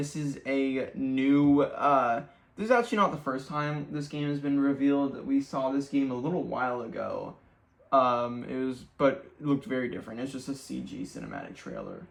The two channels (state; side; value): identical; both; correlation 1.00